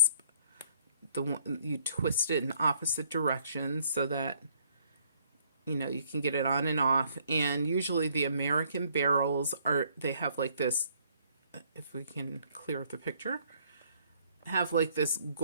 The one you twist it in opposite directions so that you can get it on and off. And usually the American barrels they have like this, if we can clear up the picture, have like this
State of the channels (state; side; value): inverted; both; correlation -0.65